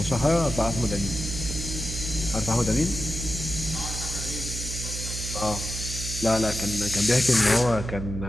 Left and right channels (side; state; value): right; noise; hum, 6 dB below the sound